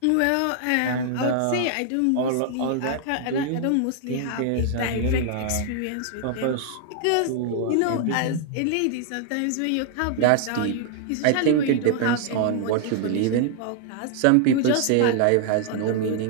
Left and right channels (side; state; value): both; different; correlation 0.00